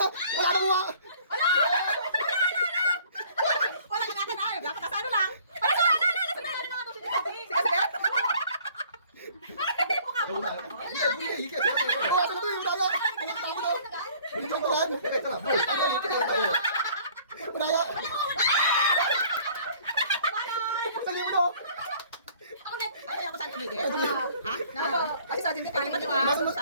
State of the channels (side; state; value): both; inverted; correlation -0.54